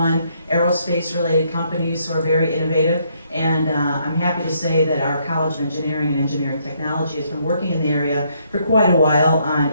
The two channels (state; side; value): inverted; both; correlation -0.71